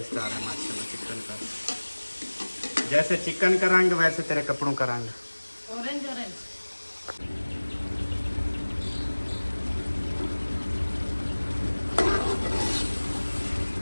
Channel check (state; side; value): inverted; both; correlation -1.00